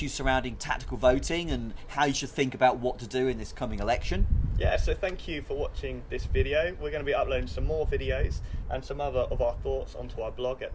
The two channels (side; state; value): both; identical; correlation 1.00